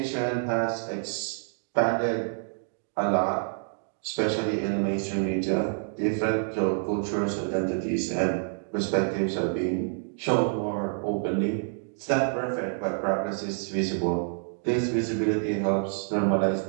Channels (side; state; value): left; silent; digital silence